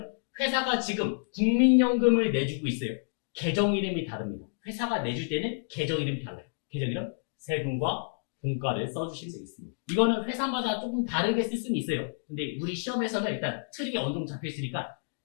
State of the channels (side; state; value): right; silent; digital silence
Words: 회사가 지금 국민연금을 내주고 있어요. 계정 이름이 다릅니다. 회사가 내줄 때는 계정 이름이 달라요. 계정 이름, 세금과 공과를 써주시면 되겠습니다. 이거는 회사마다 조금 다르게 쓸 수는 있어요. 근데 우리 시험에서는 일단 틀이 어느 정도 잡혀 있으니까